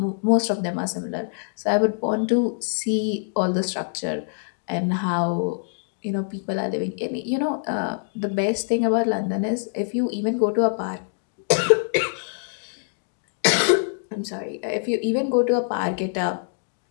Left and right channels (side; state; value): right; silent; digital silence